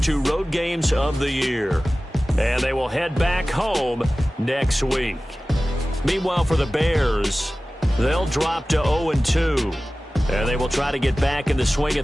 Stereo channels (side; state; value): both; normal; correlation 0.97